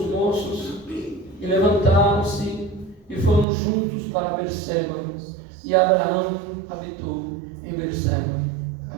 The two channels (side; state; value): left; drops out; at 3.5 s